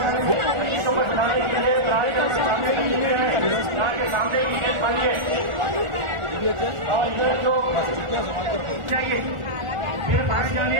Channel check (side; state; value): left; late; 1.4 ms